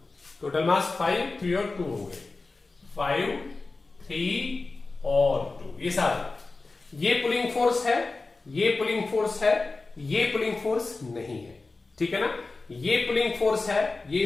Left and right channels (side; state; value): right; quieter; 3.6 dB